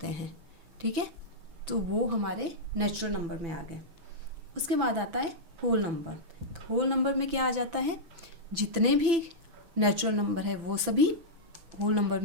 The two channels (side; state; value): left; late; 6.0 ms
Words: हैं, ठीक है, तो वो हमारे नेचुरल नंबर में आ गए। उसके बाद आता है होल नंबर। तो होल नंबर में क्या आ जाता है? जितने भी नेचुरल नंबर है वो सभी होल नंबर